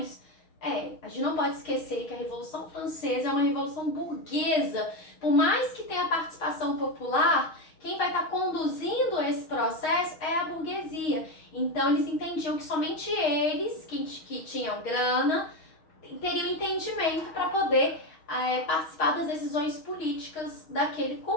A gente não pode esquecer que a Revolução Francesa é uma revolução burguesa. Por mais que tenha participação popular, quem vai estar conduzindo esse processo é a burguesia. Então eles entendiam que somente eles, que tinham grana, teriam entendimento para poder participar das decisões políticas daquele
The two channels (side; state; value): right; late; 6.4 ms